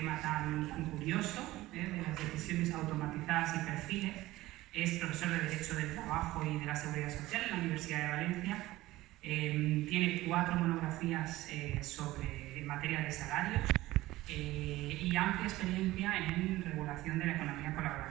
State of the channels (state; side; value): quieter; left; 17.4 dB